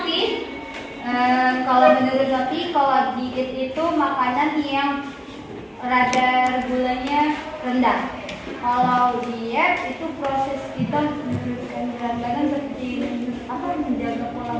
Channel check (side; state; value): both; identical; correlation 1.00